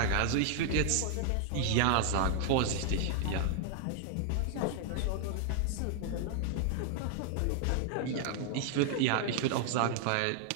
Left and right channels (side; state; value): both; different; correlation 0.00